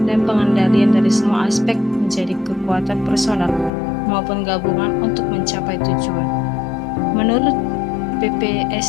dan pengendalian dari semua aspek menjadi kekuatan personal maupun gabungan untuk mencapai tujuan. Menurut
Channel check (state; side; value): drops out; right; at 3.7 s